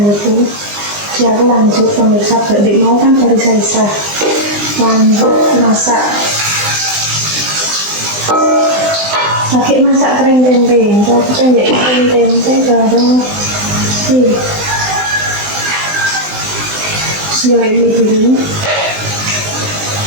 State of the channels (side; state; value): left; late; 20 ms